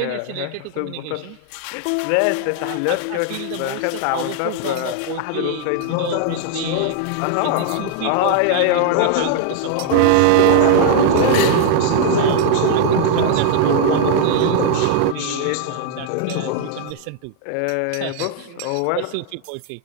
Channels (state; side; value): different; both; correlation 0.00